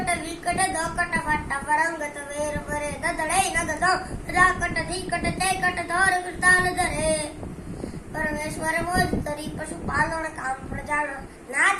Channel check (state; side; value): identical; both; correlation 1.00